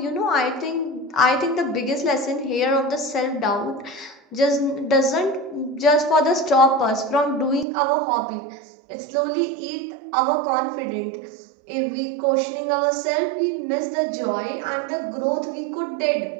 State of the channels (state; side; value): drops out; left; at 7.7 s